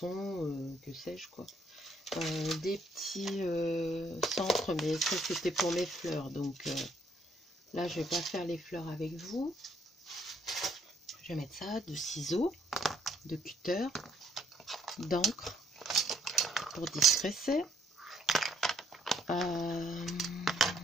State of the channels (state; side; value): normal; both; correlation 0.68